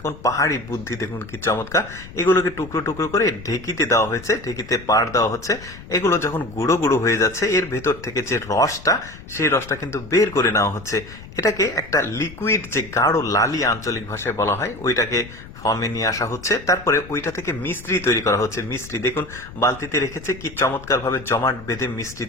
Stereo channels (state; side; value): noise; left; rumble, 16 dB below the sound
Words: পাহাড়ি বুদ্ধি দেখুন কি চমৎকার। এগুলোকে টুকরো টুকরো করে ঢেকিতে দেওয়া হয়েছে, ঢেকিতে পাড় দেওয়া হচ্ছে। এগুলো যখন গুঁড়ো গুঁড়ো হয়ে যাচ্ছে, এর ভেতর থেকে যে রসটা, সেই রসটা কিন্তু বের করে নেওয়া হচ্ছে। এটাকে একটা লিকুইড, যে গাঢ় লালি আঞ্চলিক ভাষায় বলা হয়, ওইটাকে ফর্মে নিয়ে আসা হচ্ছে। তারপরে ওইটা থেকে মিস্ত্রি তৈরি করা হচ্ছে। মিস্ত্রি দেখুন বালতিতে রেখেছে, কি চমৎকার ভাবে জমাট বেঁধে মিস্ত্রি